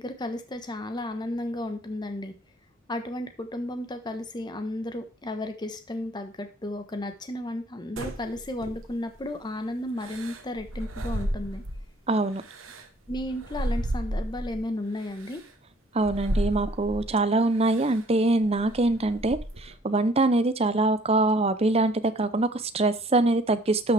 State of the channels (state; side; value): normal; both; correlation 0.58